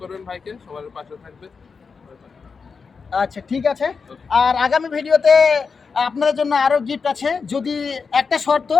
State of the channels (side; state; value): right; quieter; 5.2 dB